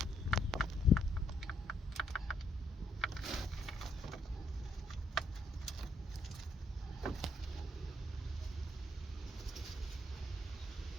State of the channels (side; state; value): both; normal; correlation 0.72